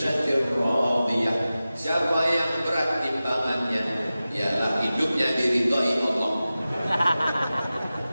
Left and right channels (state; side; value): inverted; both; correlation -0.95